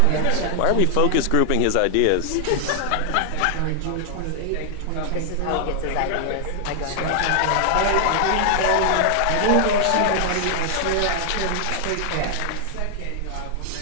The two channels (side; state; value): both; different; correlation 0.00